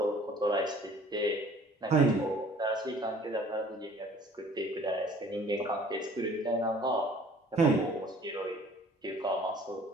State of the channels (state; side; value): normal; both; correlation 0.52